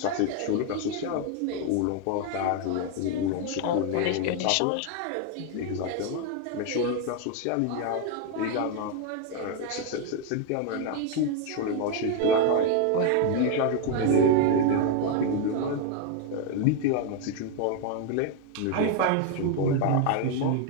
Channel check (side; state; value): both; different; correlation 0.01